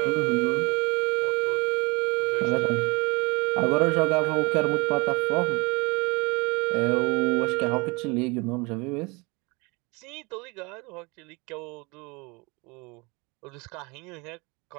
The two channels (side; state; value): left; quieter; 27.2 dB